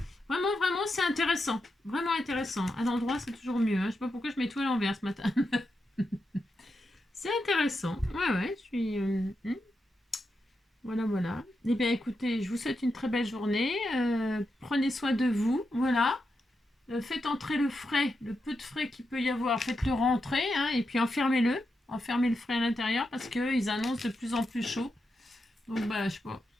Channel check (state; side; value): normal; both; correlation 0.86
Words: vraiment, c'est intéressant. Vraiment intéressant. À l'endroit, c'est toujours mieux. Hein. Je sais pas pourquoi je mets tout à l'envers ce matin. C'est intéressant. Ouais, je suis... Voilà, voilà. Eh bien, écoutez, je vous souhaite une très belle journée. Prenez soin de vous. Voilà. Faites entrer le frais, le peu de frais qu'il peut y avoir. Faites-le rentrer. Hein, et puis enfermez-le. Enfermez le frais à l'intérieur parce qu'ils annoncent de plus en plus chaud. Donc, bah, je